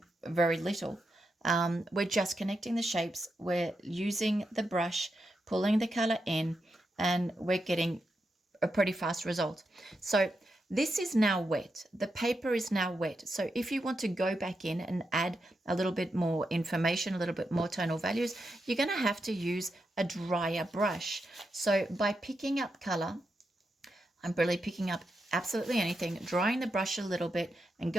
very little. We're just connecting the shapes, we're using the brush, pulling the color in, and we're getting a pretty fast result. So this is now wet. The paper is now wet. So if you want to go back in and add a little bit more information, a little bit more tonal values, you're going to have to use a drier brush. So by picking up color, I'm really picking up absolutely anything, drying the brush a little bit and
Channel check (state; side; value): normal; both; correlation 0.86